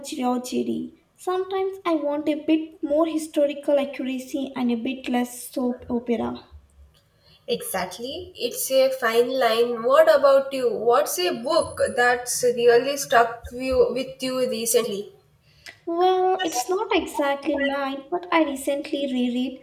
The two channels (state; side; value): identical; both; correlation 1.00